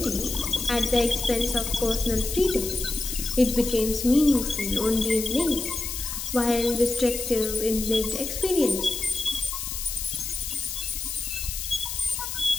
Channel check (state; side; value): noise; left; hiss, 5 dB below the sound